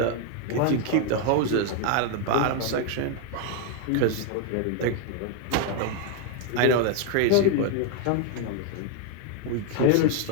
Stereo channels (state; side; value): different; both; correlation 0.00